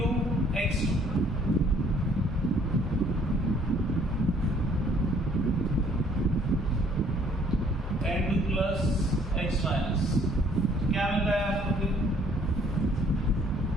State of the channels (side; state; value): both; normal; correlation 0.61